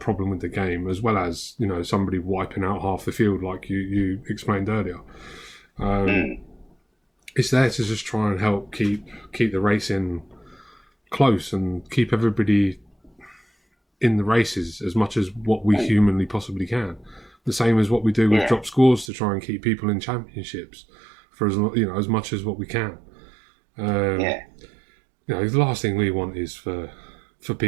with the game, as well as somebody wiping out half the field, like you explained earlier. It's there to just try and help keep the racing close and keep everybody in the races as much as what we humanly possibly can. The same as what we do with drop scores to try and keep people in championships for as much as what we can. The last thing we want is for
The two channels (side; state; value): left; drops out; at 19.1 s